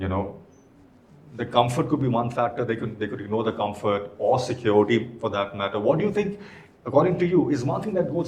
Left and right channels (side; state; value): both; identical; correlation 1.00